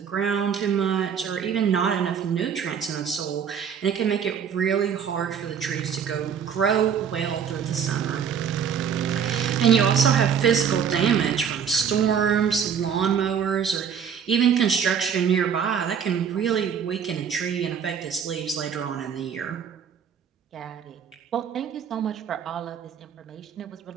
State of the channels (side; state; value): left; quieter; 7.5 dB